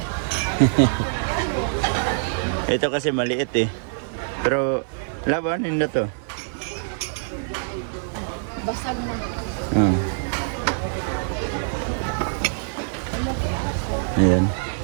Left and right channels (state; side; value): silent; left; digital silence